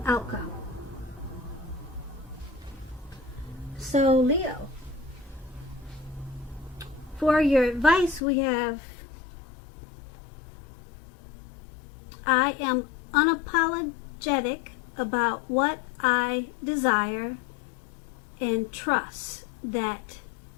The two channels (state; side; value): drops out; right; at 8.2 s